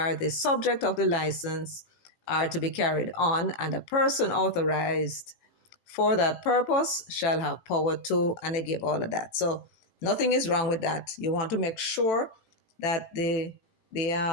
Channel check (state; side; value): late; right; 18 ms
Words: the subject of the license are to be carried on, and a person authorized for that purpose shall have power to, and they give all of that. So nothing is wrong with that. You want to make sure that the